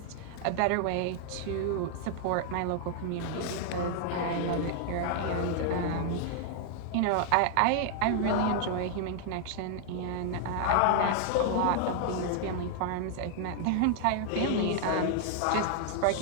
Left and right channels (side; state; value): both; different; correlation 0.00